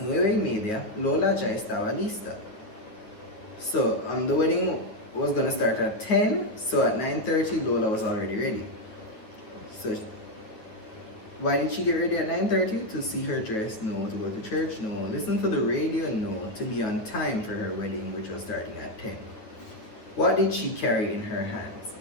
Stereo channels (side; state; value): right; late; 9.3 ms